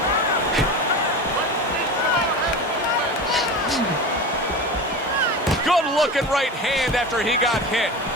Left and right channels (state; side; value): normal; both; correlation 0.28